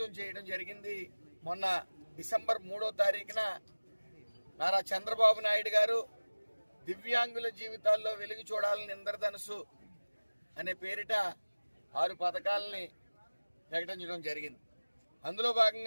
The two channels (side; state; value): both; inverted; correlation -1.00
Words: చేయడం జరిగింది. మొన్న డిసెంబర్ 3వ తారీఖున నారా చంద్రబాబు నాయుడు గారు దివ్యాంగుల జీవితాల్లో వెలుగు చూడాలని ఇంద్రధనుసు అనే పేరిట 6 పథకాలని ప్రకటించడం జరిగింది. అందులో